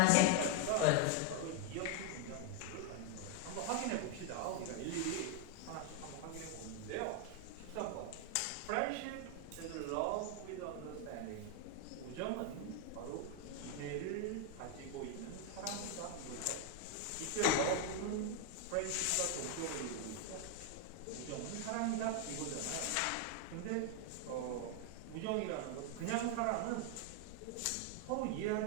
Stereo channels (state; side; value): different; both; correlation 0.01